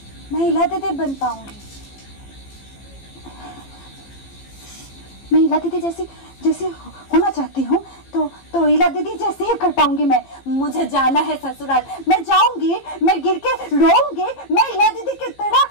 मैं इला दीदी बन पाऊंगी। मैं इला दीदी जैसी जैसी होना चाहती हूँ तो इला दीदी जैसे ही कर पाऊंगी मैं। मुझे जाना है ससुराल, मैं जाऊंगी, मैं गिर के रोऊंगी, मैं इला दीदी की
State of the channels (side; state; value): right; late; 15 ms